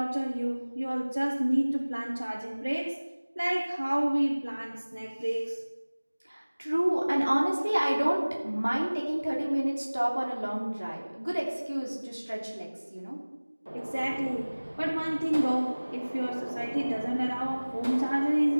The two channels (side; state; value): both; inverted; correlation -1.00